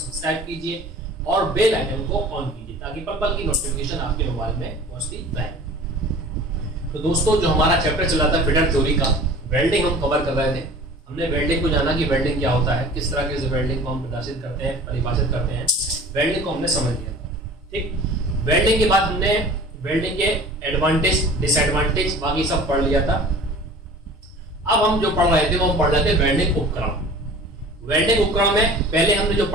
कीजिए और बेल आइकन को ऑन कीजिए ताकि पल पल की नोटिफिकेशन आपके मोबाइल में पहुँचती रहे। तो दोस्तों, जो हमारा चैप्टर चला था फिटर थ्योरी का, वेल्डिंग हम कवर कर रहे थे। हमने वेल्डिंग को जाना कि वेल्डिंग क्या होता है, किस तरह के वेल्डिंग को हम प्रदर्शित करते हैं, परिभाषित करते हैं। वेल्डिंग को हमने समझ लिया था। ठीक, वेल्डिंग के बाद हमने वेल्डिंग के एडवांटेज, डिसएडवांटेज बाकी सब पढ़ लिया था। अब हम जो पढ़ रहे थे वो हम पढ़ रहे थे वेल्डिंग उपकरण। वेल्डिंग उपकरण में पहले हमने जो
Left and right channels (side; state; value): both; normal; correlation 0.43